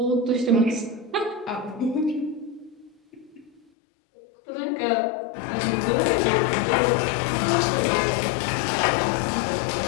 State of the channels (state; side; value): drops out; right; at 3.6 s